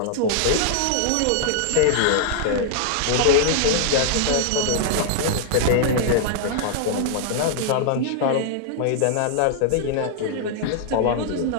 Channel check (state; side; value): different; both; correlation -0.01